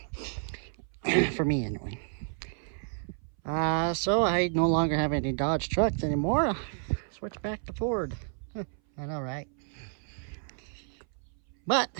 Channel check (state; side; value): silent; left; 57 dB below the other